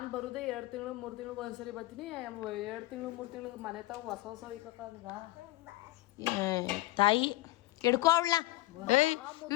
ಬರೋದೇ 2 ತಿಂಗಳು 3 ತಿಂಗಳಿಗೆ ಒಂದ್ಸರಿ ಬರ್ತೀನಿ. 2 ತಿಂಗಳು 3 ತಿಂಗಳಿಗೆ ಮನೆ ತಾವು ಹೊಸ ಇಕ್ಕ ತಾಯಿ ಹಿಡ್ಕೊ ಅವಳ. ಏಯ್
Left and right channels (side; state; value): right; quieter; 17.9 dB